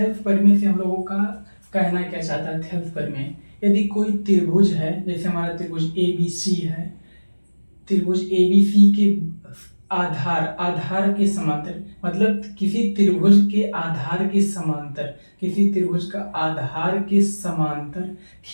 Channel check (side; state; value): both; inverted; correlation -1.00